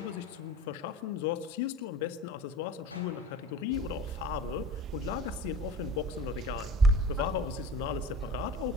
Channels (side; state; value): both; normal; correlation 0.39